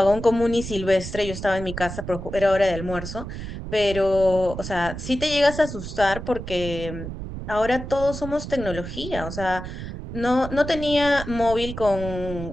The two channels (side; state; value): right; noise; rumble, 8 dB below the sound